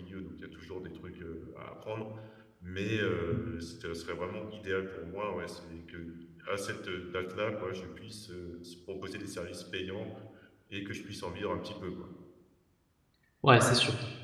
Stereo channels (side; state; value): both; identical; correlation 1.00